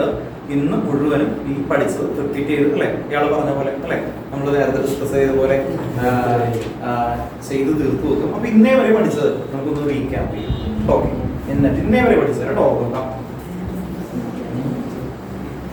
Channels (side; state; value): both; identical; correlation 1.00